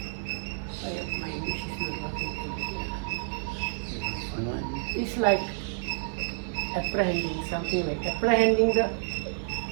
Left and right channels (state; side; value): silent; left; digital silence